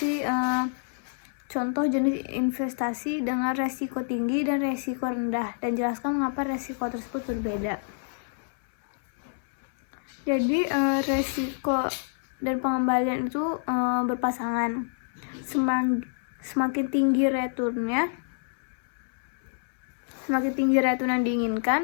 contoh jenis investasi dengan resiko tinggi dan resiko rendah, dan jelaskan mengapa resiko tersebut berbeda. Jadi resiko dan pengembalian itu berpasangan. Semakin tinggi return yang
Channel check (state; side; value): silent; right; 59 dB below the other